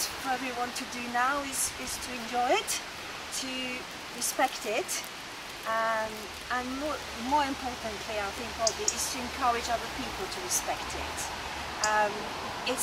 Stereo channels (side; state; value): both; identical; correlation 1.00